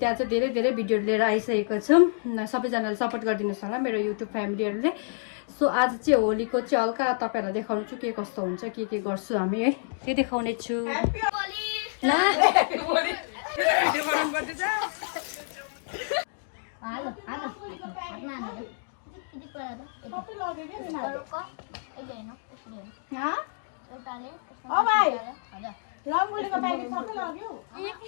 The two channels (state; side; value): silent; right; digital silence